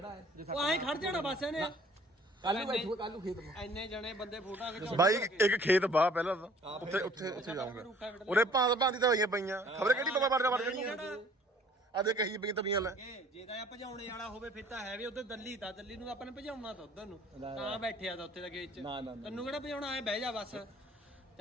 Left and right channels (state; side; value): normal; both; correlation 0.55